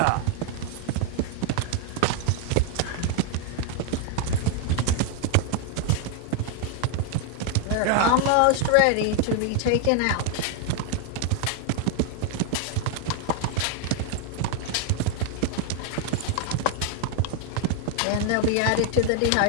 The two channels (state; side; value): different; both; correlation 0.00